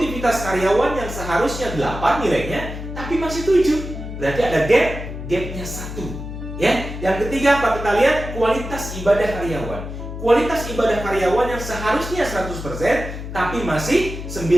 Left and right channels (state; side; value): noise; left; hum, 8 dB below the sound